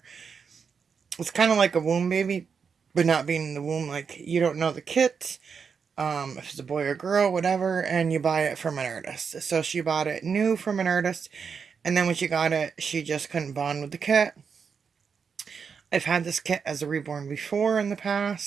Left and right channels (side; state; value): left; quieter; 6.1 dB